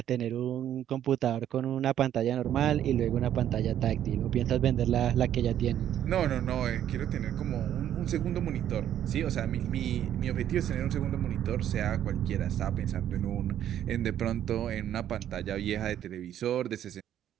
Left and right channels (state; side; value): quieter; left; 10.8 dB